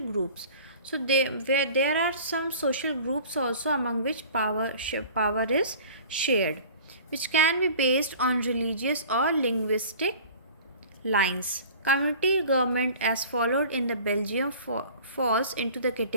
groups. So there are some social groups also among which power is shared, which can be based on religious or linguistic lines. Community government as followed in the Belgium falls into the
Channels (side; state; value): both; inverted; correlation -0.44